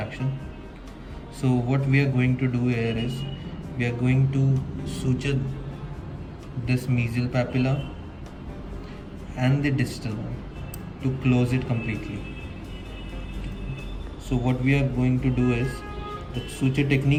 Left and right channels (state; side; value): identical; both; correlation 1.00